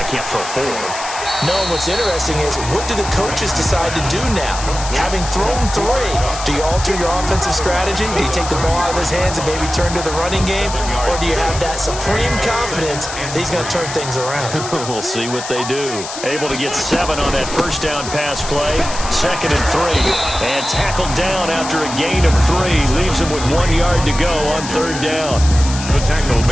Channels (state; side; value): noise; left; hiss, 9 dB below the sound